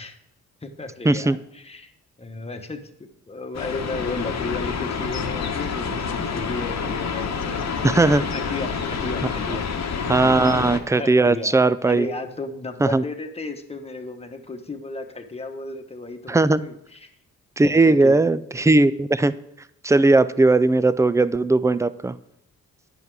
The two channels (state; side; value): normal; both; correlation 0.74